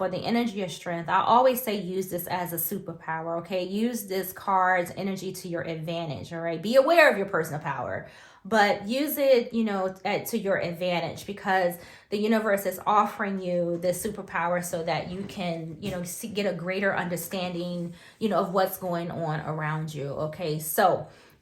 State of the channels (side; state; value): both; identical; correlation 1.00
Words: or the energy of strength, I always say use this as a superpower, okay? Use this card's energy to your advantage, all right? Be aware of your personal power, but use it, you know, to your advantage, because the universe is offering you this superpower so that you can, you know, get a greater understanding, you know, of what's going on around you, okay? So